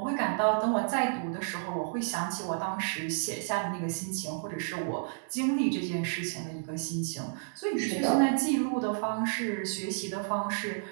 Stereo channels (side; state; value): left; silent; digital silence